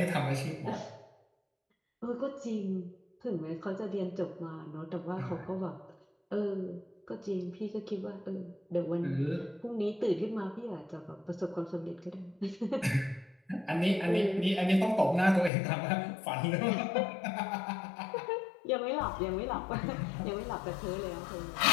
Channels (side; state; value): right; drops out; at 15.5 s